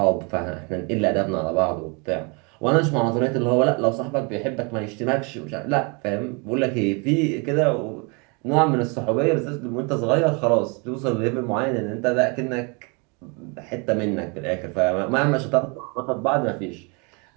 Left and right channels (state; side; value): quieter; left; 31.9 dB